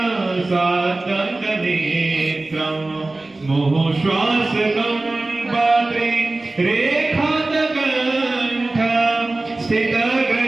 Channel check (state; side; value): quieter; left; 3.0 dB